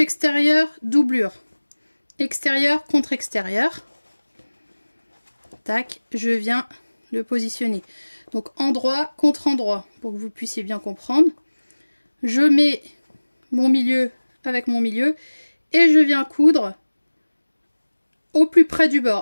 extérieur, doublure. Extérieur contre extérieur. Tac, je viens le positionner. Donc endroit contre endroit, pour que vous puissiez bien comprendre. Je mets mon milieu avec mon milieu et je viens coudre au plus près du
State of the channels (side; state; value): both; inverted; correlation -1.00